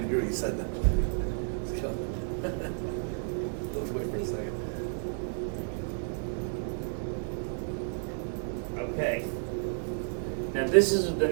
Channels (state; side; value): silent; left; digital silence